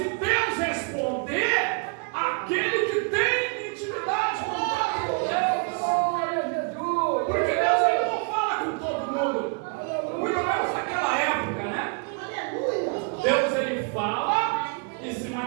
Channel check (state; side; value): quieter; left; 36.1 dB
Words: Deus responder aquele que tem intimidade, contato com Deus. Porque Deus ele não fala com todo mundo, muito menos naquela época, né? Deus ele fala e se